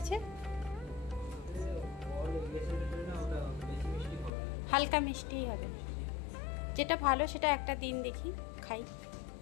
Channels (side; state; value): right; drops out; at 4.3 s